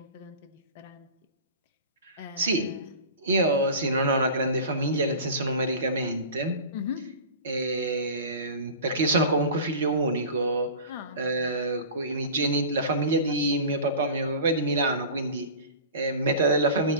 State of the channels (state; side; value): inverted; both; correlation -0.36